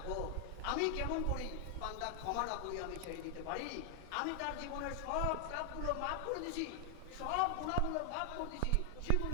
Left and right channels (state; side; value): different; both; correlation 0.00